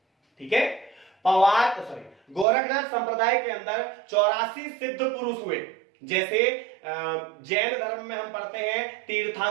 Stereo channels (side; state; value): left; drops out; at 2.5 s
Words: ठीक है, गोरखनाथ संप्रदाय के अंदर 84 सिद्ध पुरुष हुए। जैसे जैन धर्म में हम पढ़ते हैं